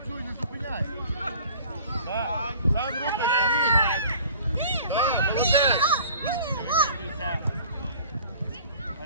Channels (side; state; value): both; inverted; correlation -0.47